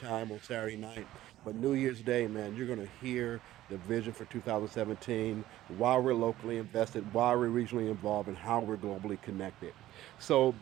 on Saturday night. But New Year's Day, man, you're going to hear the vision for 2017, why we're locally invested, why we're regionally involved, and how we're globally connected. So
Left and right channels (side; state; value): left; quieter; 14.5 dB